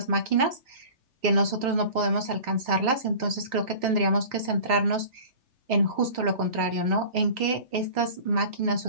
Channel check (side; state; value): left; late; 3.6 ms